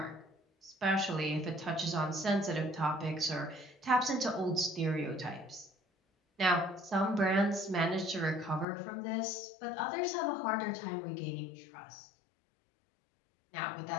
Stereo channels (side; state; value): right; drops out; at 8.7 s